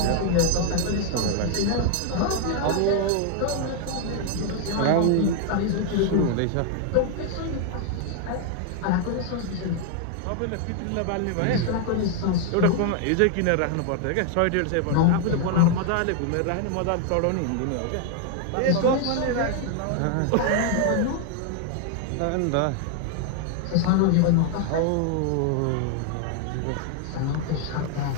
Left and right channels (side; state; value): both; different; correlation 0.00